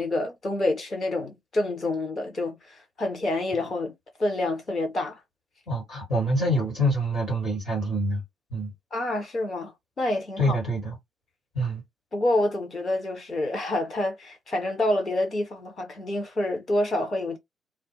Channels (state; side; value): normal; both; correlation 0.77